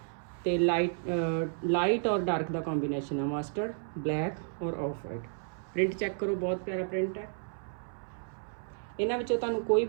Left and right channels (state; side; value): silent; left; 56 dB below the other